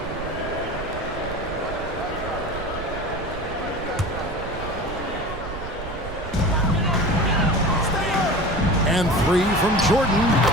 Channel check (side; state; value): right; noise; rumble, 10 dB below the sound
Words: And three from Jordan.